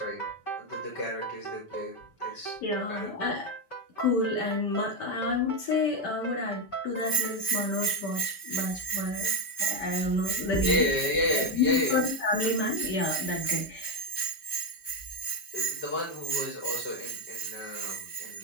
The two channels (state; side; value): late; right; 5.2 ms